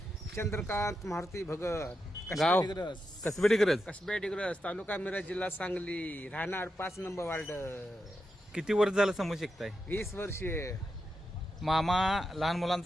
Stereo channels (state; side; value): normal; both; correlation 0.87